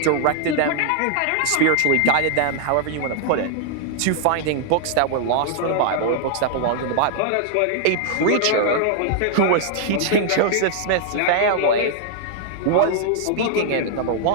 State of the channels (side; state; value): both; different; correlation 0.00